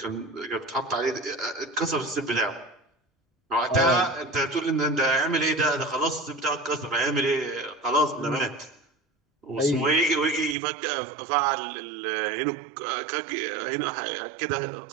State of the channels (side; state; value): left; drops out; at 10.6 s